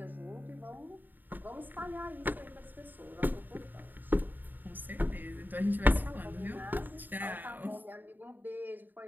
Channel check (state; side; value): late; left; 0.089 ms